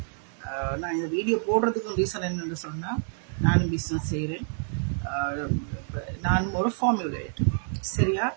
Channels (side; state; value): left; silent; digital silence